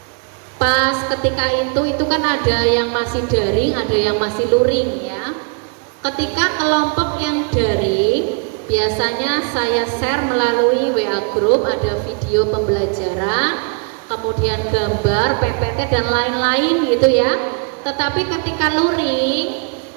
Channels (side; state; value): left; quieter; 38.5 dB